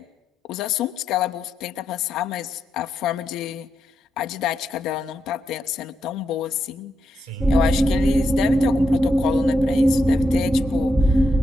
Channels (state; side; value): normal; both; correlation 0.83